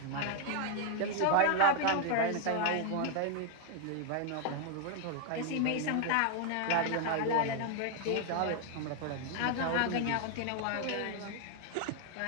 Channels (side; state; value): both; different; correlation 0.00